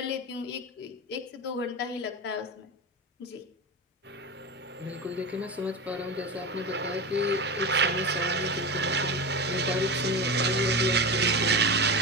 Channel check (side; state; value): both; normal; correlation 0.23